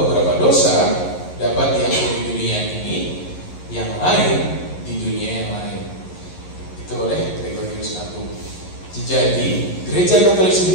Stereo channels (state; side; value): late; right; 11 ms